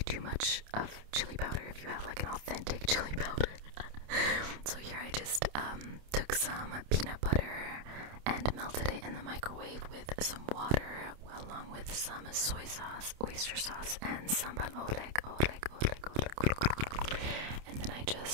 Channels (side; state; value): left; late; 28 ms